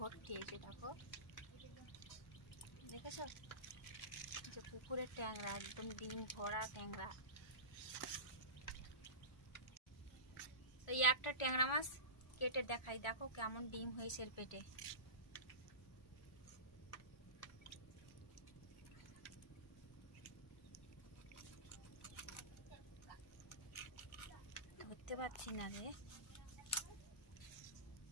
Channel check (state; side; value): late; right; 1.4 ms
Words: এই যে দেখো, দেখেছো যে পুকুরের ট্যাংরা একদম ডিম ভরা ট্যাংরা। তো এই একটা ট্যাংরা মাছ কেটে দেখাই, দেখো কেমন ডিম হয়েছে এর পেটে। ধরতে পারছি না রে।